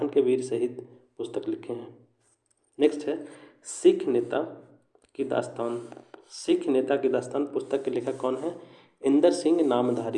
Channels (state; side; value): identical; both; correlation 1.00